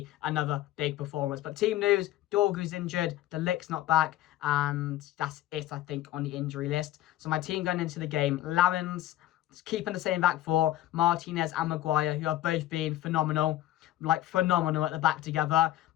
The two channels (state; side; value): quieter; right; 14.3 dB